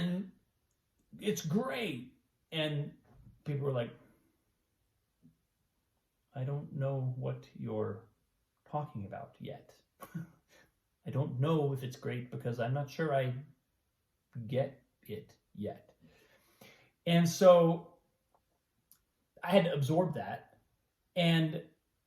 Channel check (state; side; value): identical; both; correlation 1.00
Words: it's great. And people were like, I don't know what you're talking about yet. I don't know if it's great because I'm not sure I get it yet. And so I had to absorb that.